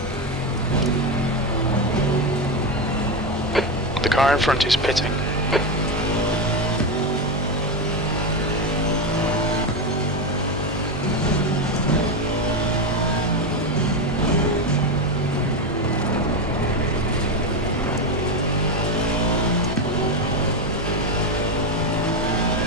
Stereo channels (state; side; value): normal; both; correlation 0.12